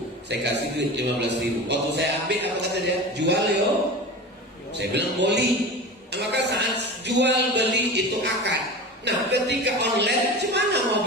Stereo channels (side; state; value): both; normal; correlation 0.31